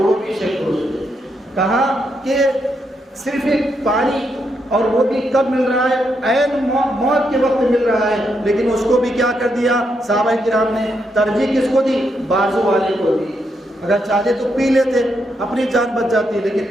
بھی شہید ہو چکے. کہا کہ صرف ایک پانی اور وہ بھی کب مل رہا ہے؟ عین موت کے وقت مل رہا ہے، لیکن اس کو بھی کیا کر دیا صحابہ کرام نے؟ ترجیح کس کو دی؟ بازو والے کو دی. اگر چاہتے تو پی لیتے، اپنی جان بچ جاتی،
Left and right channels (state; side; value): normal; both; correlation 0.80